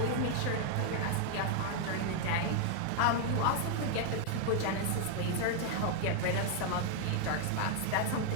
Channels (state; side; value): different; both; correlation 0.00